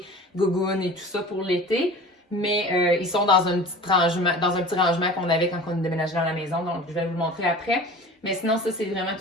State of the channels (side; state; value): both; normal; correlation 0.39